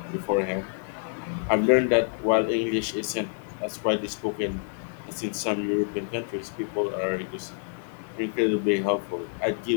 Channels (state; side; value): silent; right; 60 dB below the other